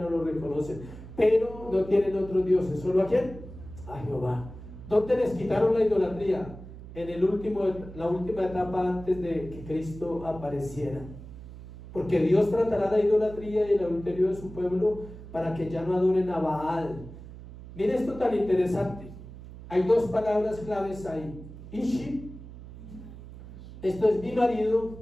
lo reconocen, pero no tienen otros dioses, solo ¿a quién? A Jehová. ¿Dónde les quitaron la idolatría? En la última etapa antes de que Cristo apareciera. Porque Dios tratará la idolatría y el adulterio de su pueblo para que ya no adoren a Baal. Mire esto tan interesante. Hay dos palabras claves ahí. Ishi, esto es mi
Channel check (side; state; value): right; noise; hum, 14 dB below the sound